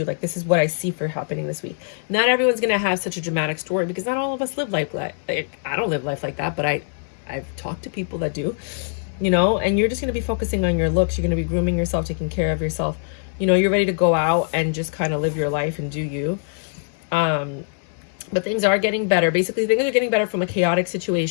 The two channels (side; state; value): right; silent; 64 dB below the other